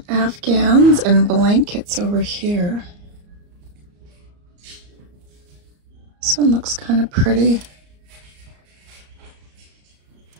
Afghans and blankets over here. This one looks kind of pretty.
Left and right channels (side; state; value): left; late; 34 ms